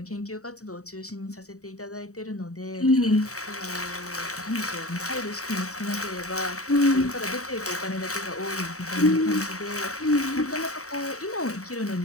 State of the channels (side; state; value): right; late; 0.65 ms